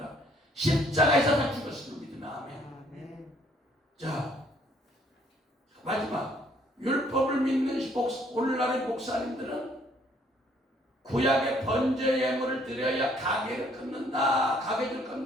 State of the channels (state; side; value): normal; both; correlation 0.64